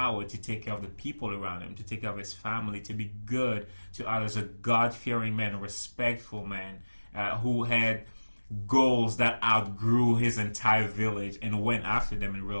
to take care of the people around him, to take care of his family, to be good to others, a God-fearing man, a respectful man, who had goals that outgrew his entire village and went after them and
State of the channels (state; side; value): inverted; both; correlation -1.00